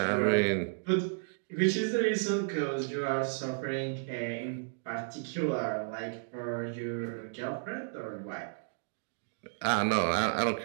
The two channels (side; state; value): left; silent; digital silence